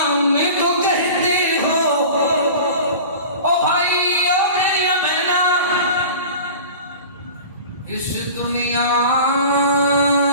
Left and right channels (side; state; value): both; inverted; correlation -0.38